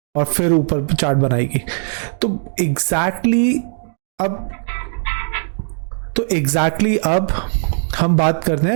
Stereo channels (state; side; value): silent; left; digital silence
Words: और फिर ऊपर चार्ट बनाएगी। तो एग्जैक्टली अब हम बात करते